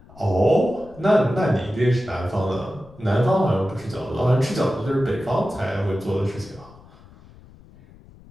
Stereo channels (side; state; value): left; noise; rumble, 23 dB below the sound